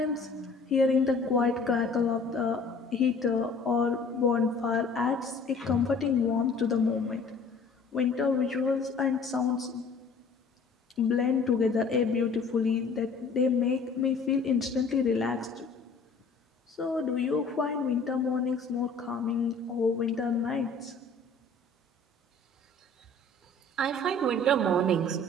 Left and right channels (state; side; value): quieter; right; 3.5 dB